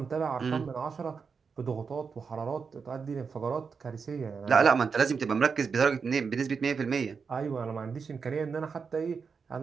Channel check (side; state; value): left; quieter; 5.6 dB